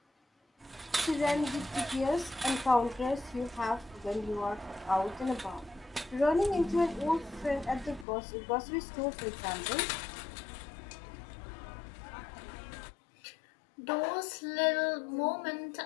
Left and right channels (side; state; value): right; drops out; at 8.1 s